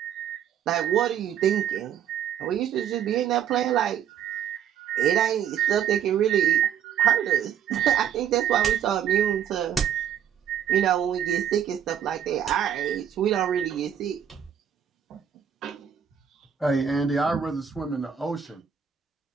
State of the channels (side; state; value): left; quieter; 9.1 dB